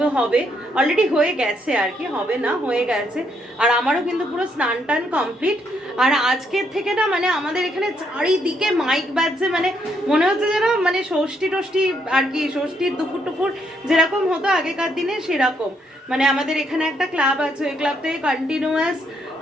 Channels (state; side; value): normal; both; correlation 0.74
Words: হবে, অলরেডি হয়ে গেছে আর কি, হবে না হয়ে গেছে। আর আমারও কিন্তু পুরো স্নান টান কমপ্লিট। আর আজকের থেকে না মানে আমাদের এখানে চারিদিকে মাইক বাজছে, মানে মনে হচ্ছে যেন মানে ষষ্ঠী টষ্ঠী আর কি, ষষ্ঠীর দুপুর টুপুর যেরকম হতো আগেকার দিনে সেরকম। মানে আমাদের এখানে একটা ক্লাব আছে, ওই ক্লাব থেকে কন্টিনিউয়াস